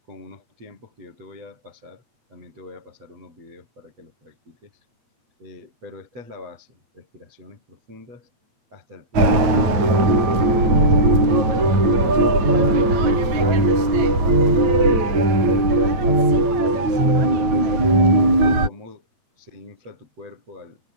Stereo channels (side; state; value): left; late; 9.1 ms